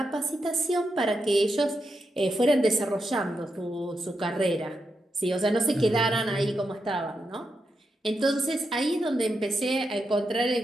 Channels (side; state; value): both; normal; correlation 0.85